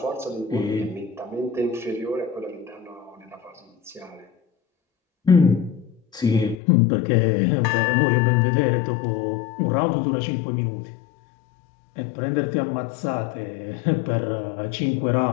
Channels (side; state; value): right; drops out; at 6.6 s